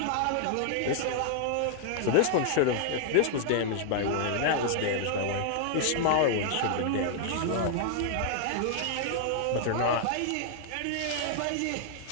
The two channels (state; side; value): different; both; correlation 0.00